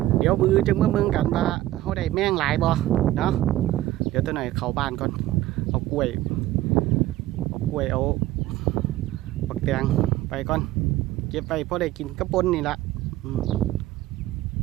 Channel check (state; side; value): quieter; left; 15.3 dB